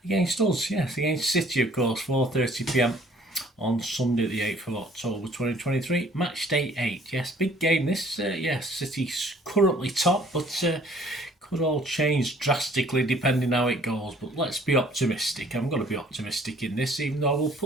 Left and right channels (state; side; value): normal; both; correlation 0.57